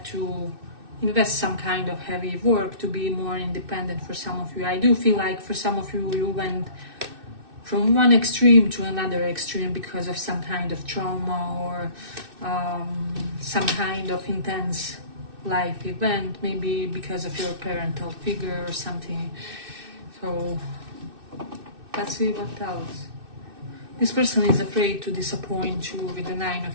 to invest some kind of heavy work to be more independent for some of you. I do feel like for some of you, you went from one extreme to another extreme because of some kind of trauma or some kind of intense life event, maybe because of your parental figure or something. So let's see what else. This person is afraid to disappoint you with the 9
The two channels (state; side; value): late; left; 2.6 ms